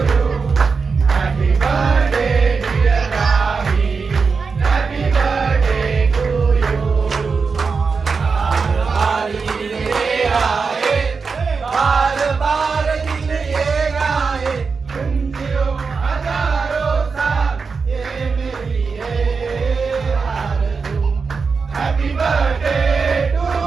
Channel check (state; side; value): quieter; left; 5.0 dB